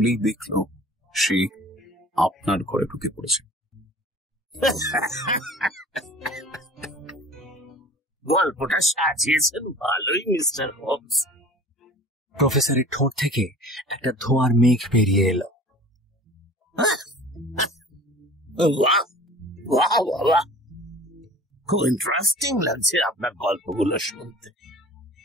দেখল সে আপনার ঘরে ঢুকে পড়েছে। গল্পটা সাজিয়েছেন ভালোই মিস্টার হোমস। প্রফেসরের ঠোঁট থেকে একটা ধোঁয়ার মেঘ বেরিয়ে এলো। খুব ইন্টারেস্টিং লাগছে আপনার গল্পগুলো শুনতে,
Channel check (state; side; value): normal; both; correlation 0.44